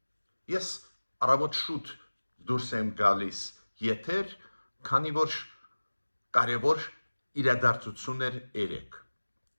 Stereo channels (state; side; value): inverted; both; correlation -1.00